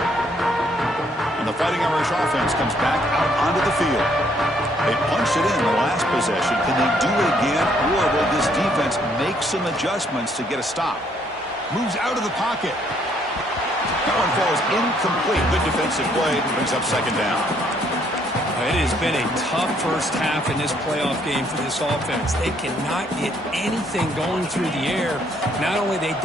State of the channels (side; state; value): both; normal; correlation 0.68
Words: And the Fighting Irish offense comes back out onto the field. They punched it in the last possession. Can they do it again, or will this defense make some adjustments to get a stop? Moves out of the pocket. That one falls incomplete. Good defensive play. Brings up second down. It has been a tough first half in this playoff game for this offense. They cannot get anything going through the air. Not only they